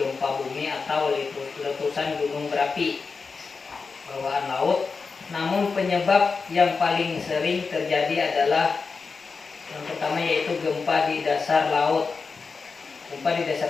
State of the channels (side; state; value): right; quieter; 4.8 dB